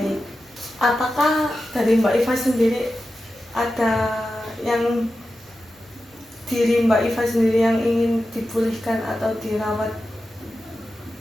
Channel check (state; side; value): normal; both; correlation 0.92